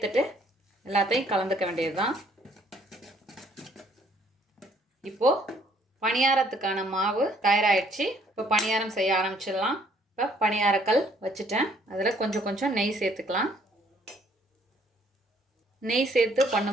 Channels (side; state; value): both; normal; correlation 0.63